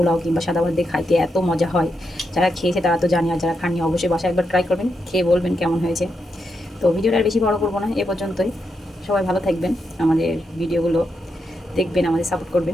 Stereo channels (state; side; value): normal; both; correlation 0.84